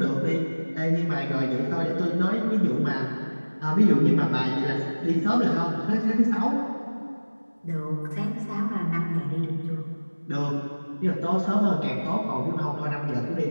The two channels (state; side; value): inverted; both; correlation -1.00